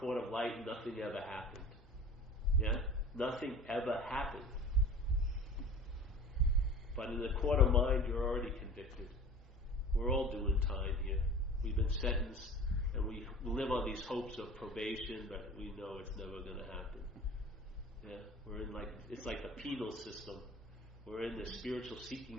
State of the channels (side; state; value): both; normal; correlation 0.40